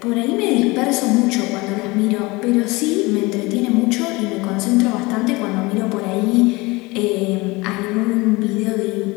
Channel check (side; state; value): right; quieter; 23.4 dB